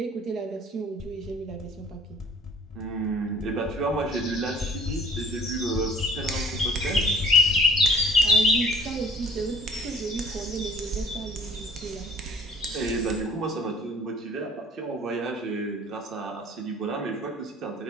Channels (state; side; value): normal; both; correlation 0.52